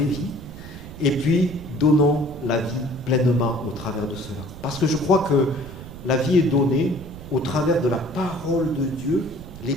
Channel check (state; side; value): noise; right; rumble, 13 dB below the sound